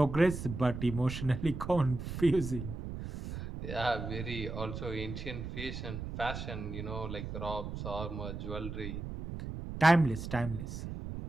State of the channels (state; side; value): noise; right; rumble, 7 dB below the sound